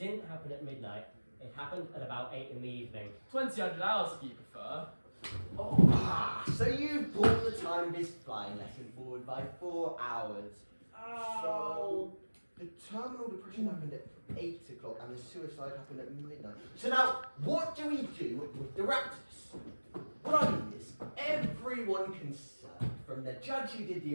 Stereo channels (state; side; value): inverted; both; correlation -1.00